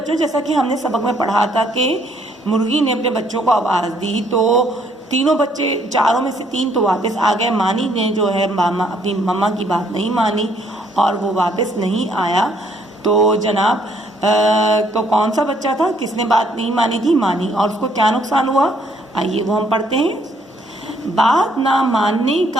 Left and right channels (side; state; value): both; normal; correlation 0.67